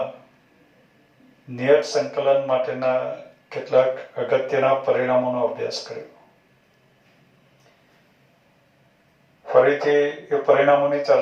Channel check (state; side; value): identical; both; correlation 1.00